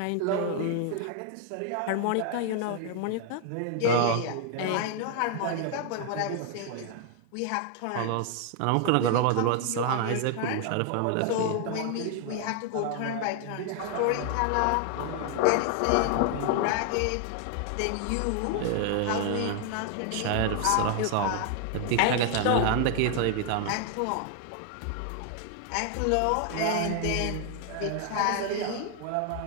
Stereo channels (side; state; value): both; different; correlation 0.00